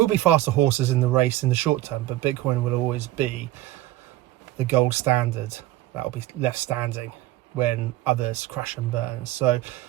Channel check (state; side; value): quieter; left; 15.3 dB